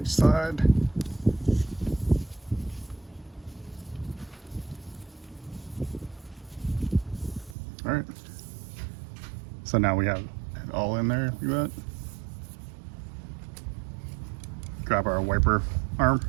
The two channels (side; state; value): left; drops out; at 7.6 s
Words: each side. All right. So now we have it all in there, like that. Grab our wiper arm.